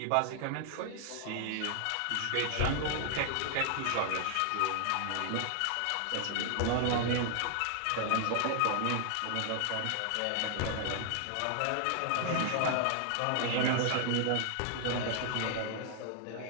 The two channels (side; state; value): both; different; correlation 0.00